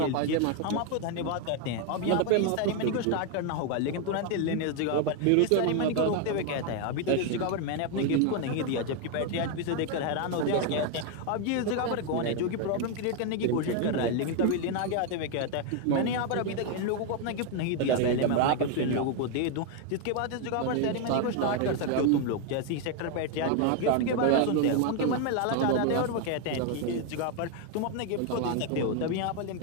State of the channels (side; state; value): both; different; correlation 0.01